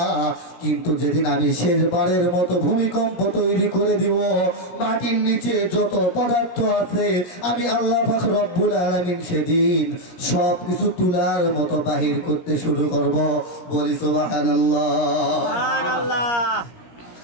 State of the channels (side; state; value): right; late; 17 ms